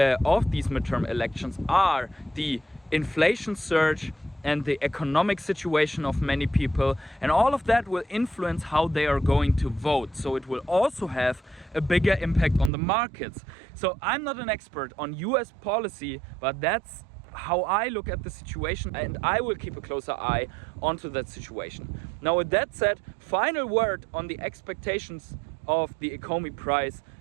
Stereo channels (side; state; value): left; drops out; at 12.7 s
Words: these midterm elections are the inflation surge and the economic situation of many people, and all of that will influence how they are going to vote. So it will also have a bigger impact on the markets. So I'm not an expert on US policy, but that's how I look at the situation, and I will keep a closer eye onto that situation. Now, with that said, final word on the expectations of the Ecomi price.